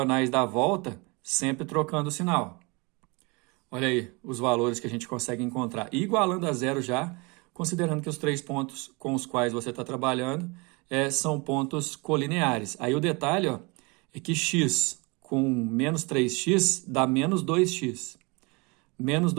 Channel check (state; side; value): quieter; left; 28.1 dB